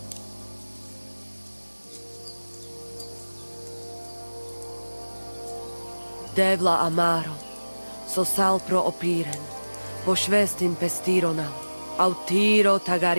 Devla amaro, so sal pro opiren, pošvestin pestironam, autiro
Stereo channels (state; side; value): inverted; both; correlation -1.00